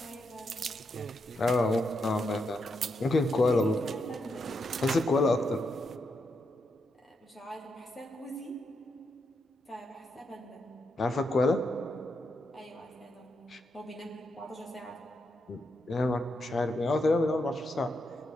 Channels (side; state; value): both; normal; correlation 0.82